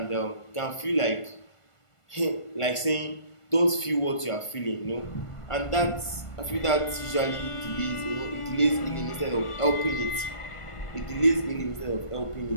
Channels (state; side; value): late; right; 1.5 ms